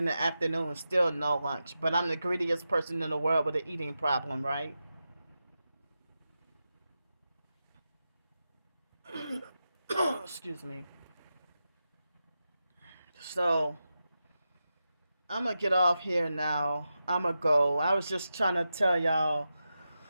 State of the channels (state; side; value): inverted; both; correlation -0.90